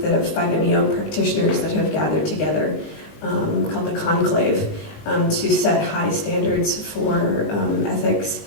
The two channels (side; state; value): right; late; 20 ms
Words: of 5-MeO practitioners that have gathered together called the Conclave. to set high standards for ethics